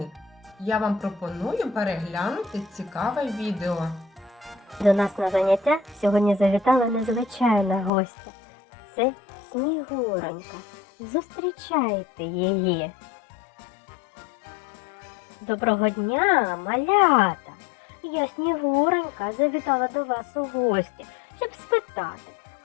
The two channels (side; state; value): right; drops out; at 7.9 s